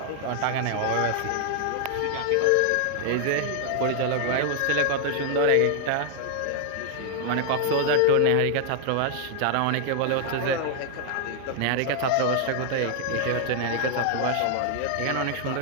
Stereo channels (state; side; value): different; both; correlation 0.00